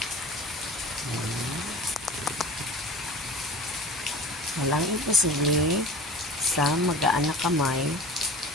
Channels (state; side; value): normal; both; correlation 0.39